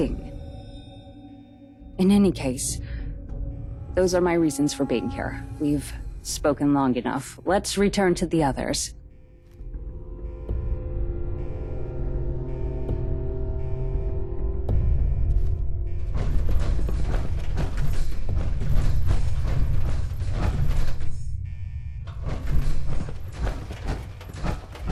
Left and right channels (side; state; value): both; identical; correlation 1.00